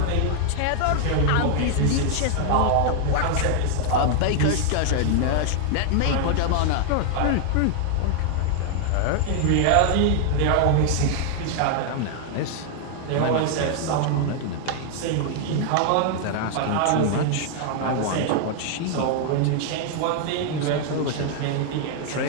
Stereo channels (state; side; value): different; both; correlation 0.00